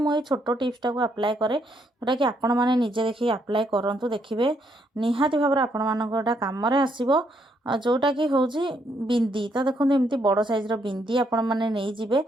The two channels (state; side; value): normal; both; correlation 0.73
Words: छोट टिप्सटा को अप्लाई करे जोटा कि आपण मैंने निजे देखिए अप्लाई करूँ देखिए निहाती भाव में आपण मानक कम आसो। जोटा कि हूँ बिंदी तो देखो एमती बड़ साइज बिंदी आपण मैंने नहीं जीवे